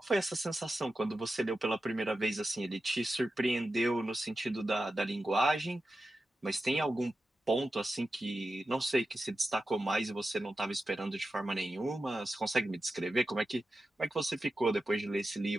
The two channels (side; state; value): both; normal; correlation 0.92